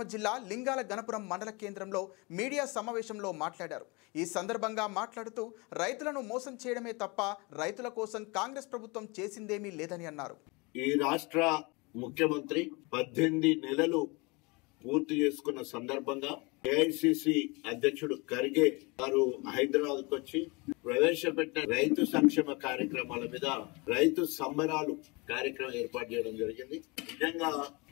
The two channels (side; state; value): right; quieter; 27.4 dB